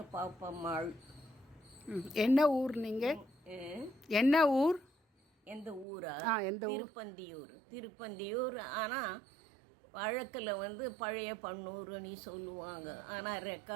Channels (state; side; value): drops out; left; at 5.9 s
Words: பாப்பம்மாள். என்ன ஊர் நீங்கள்? என்ன ஊர்? எந்த ஊரா? எந்த ஊர்? திருப்பந்தியூர். திருப்பந்தியூர். ஆனால் வழக்கில் பழைய பன்னூர்னு சொல்லுவாங்க. ஆனால்